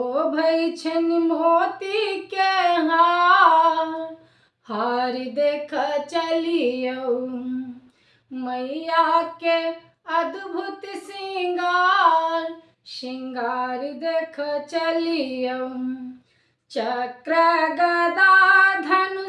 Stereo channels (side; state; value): both; identical; correlation 1.00